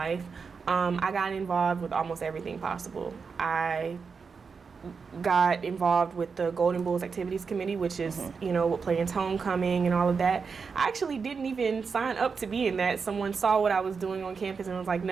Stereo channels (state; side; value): quieter; left; 5.4 dB